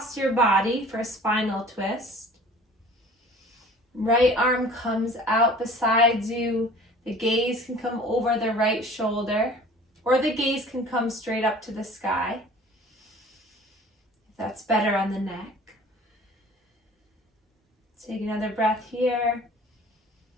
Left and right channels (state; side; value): normal; both; correlation 0.46